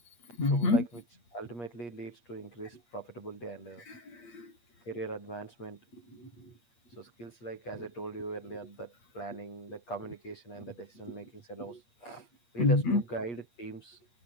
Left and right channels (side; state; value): right; late; 8.5 ms